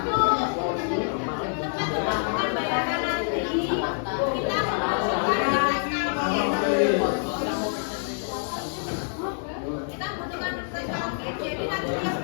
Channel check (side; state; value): right; silent; digital silence